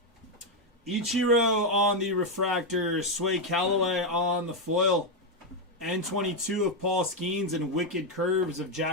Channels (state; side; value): normal; both; correlation 0.04